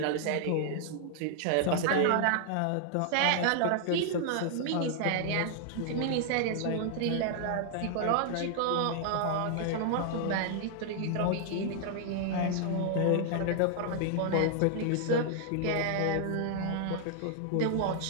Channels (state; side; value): different; both; correlation -0.01